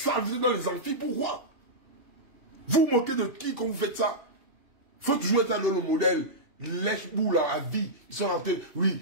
vous êtes dans les amphis, pourquoi? Vous moquez de qui quand vous faites ça? faut toujours être dans le modèle. Lèche-boule à vie. Ils sont rentrés.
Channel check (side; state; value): left; late; 2.8 ms